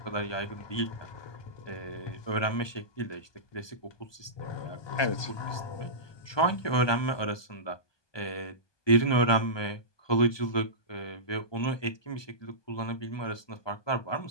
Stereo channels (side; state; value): right; late; 1.2 ms